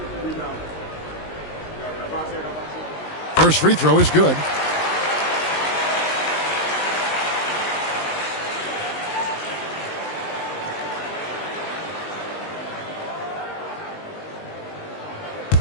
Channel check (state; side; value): late; right; 19 ms